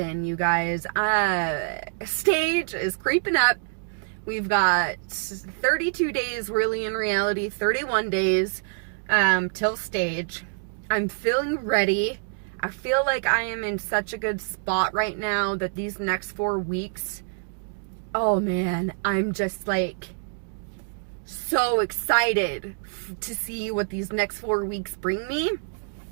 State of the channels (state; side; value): silent; left; digital silence